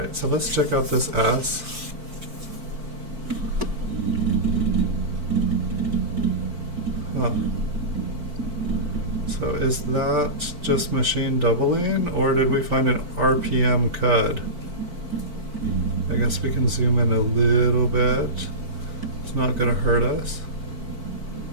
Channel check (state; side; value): late; left; 4.5 ms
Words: so let's check out this S. Huh. So is that just machine doubling, or did we find an RPM cud? I guess we can zoom in a little bit. It's not going to hurt us.